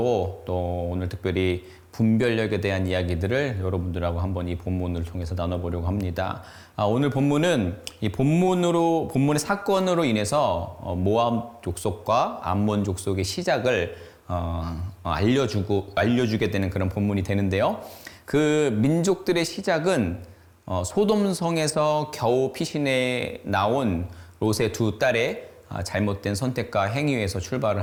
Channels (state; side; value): identical; both; correlation 1.00